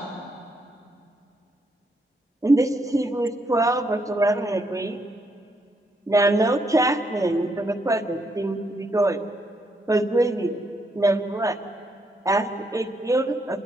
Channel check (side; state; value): both; normal; correlation 0.76